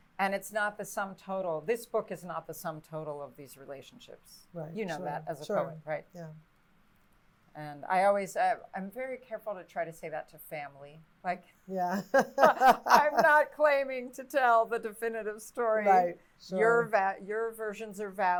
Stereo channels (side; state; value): both; identical; correlation 1.00